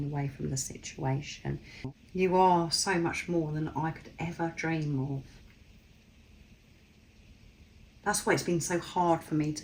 away from the situation. You are so much more than I could ever dream of. That's why it's been so hard for me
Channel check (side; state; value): both; identical; correlation 1.00